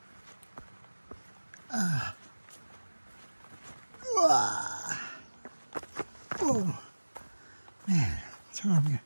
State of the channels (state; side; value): inverted; both; correlation -1.00